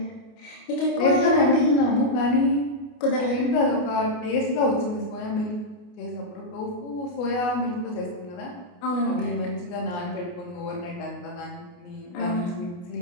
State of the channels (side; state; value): right; late; 28 ms